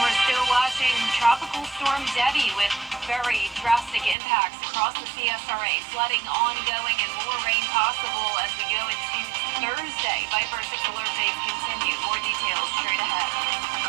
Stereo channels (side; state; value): left; drops out; at 4.2 s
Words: still watching Tropical Storm Debbie with very drastic impacts across the CSRA. Flooding ongoing and more rain possible as we go into Thursday. Viper 6 alert days continue. More details straight ahead.